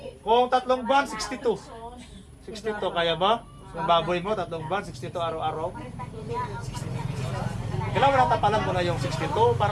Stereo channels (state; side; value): identical; both; correlation 1.00